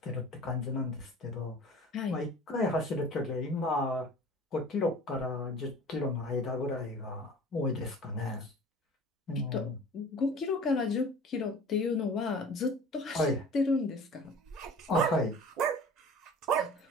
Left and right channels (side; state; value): both; normal; correlation 0.42